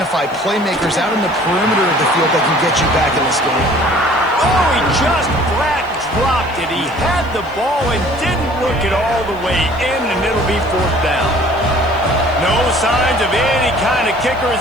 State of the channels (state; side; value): noise; left; hiss, 28 dB below the sound